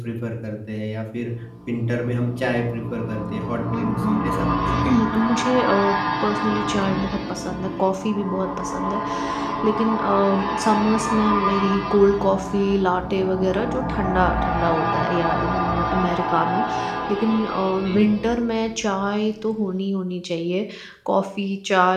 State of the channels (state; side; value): identical; both; correlation 1.00